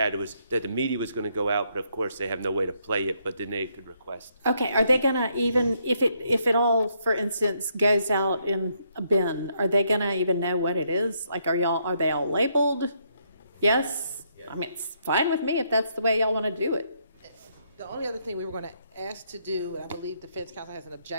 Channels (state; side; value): inverted; both; correlation -0.74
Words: was that the media was going to go out, but of course they have no way to play it, but then they could request. Okay, are they gonna even, if it all, for instance, goes out in a bin, are they gonna even know what it is? Like, are they all labeled? Yes? I mean, it's fine with me if that's the way y'all want to do it. The only other thing we were going to ask to do, and I believe defense counsel has an